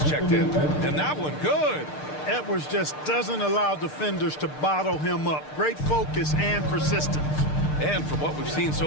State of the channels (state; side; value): late; right; 6.6 ms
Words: checked in, and that one good. Edwards just doesn't allow defenders to bottle him up. Great focus and persistence. And from what we've seen